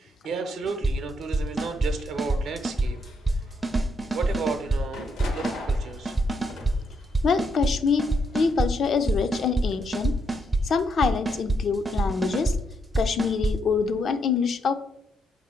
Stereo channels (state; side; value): normal; both; correlation 0.77